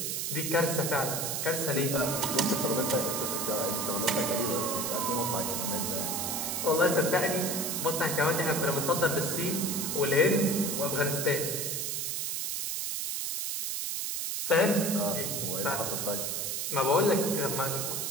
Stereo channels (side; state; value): right; noise; hiss, 1 dB below the sound